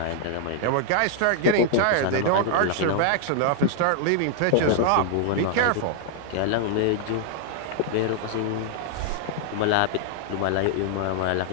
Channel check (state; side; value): different; both; correlation 0.00